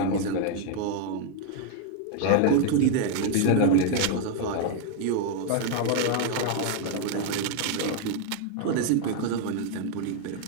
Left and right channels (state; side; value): different; both; correlation 0.00